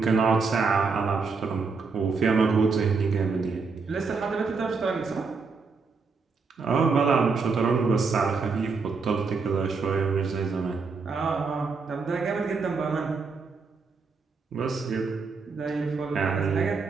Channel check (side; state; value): left; quieter; 4.7 dB